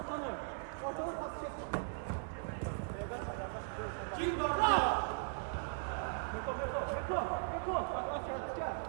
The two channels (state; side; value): silent; left; digital silence